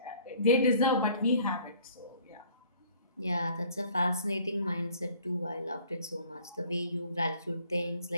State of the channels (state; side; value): inverted; both; correlation -0.55